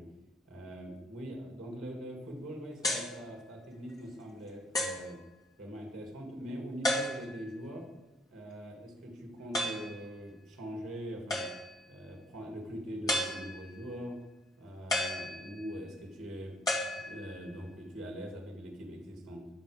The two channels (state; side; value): normal; both; correlation 0.66